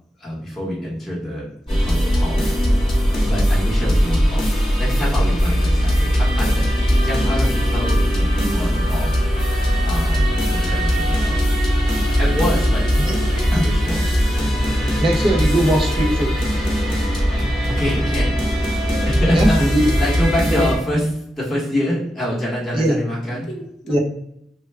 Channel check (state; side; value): normal; both; correlation 0.90